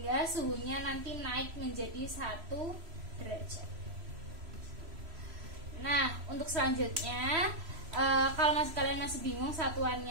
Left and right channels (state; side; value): late; left; 3.0 ms